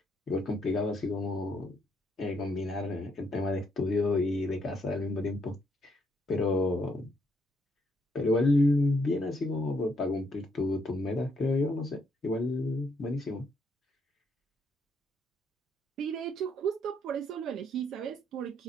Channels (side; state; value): both; normal; correlation 0.73